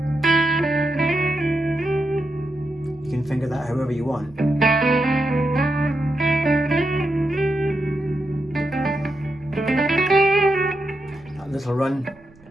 You can finger that however you want. That little run.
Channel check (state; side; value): noise; right; rumble, 27 dB below the sound